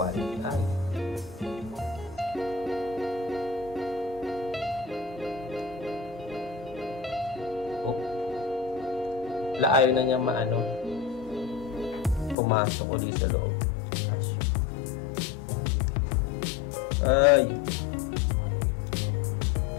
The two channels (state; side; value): drops out; right; at 12.4 s